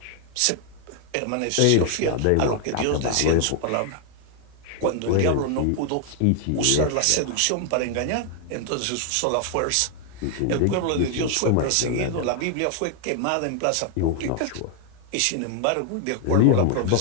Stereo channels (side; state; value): both; different; correlation 0.00